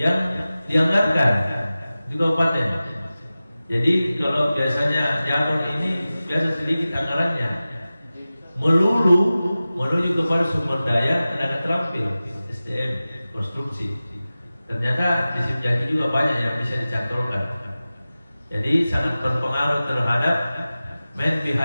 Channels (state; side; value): inverted; both; correlation -0.96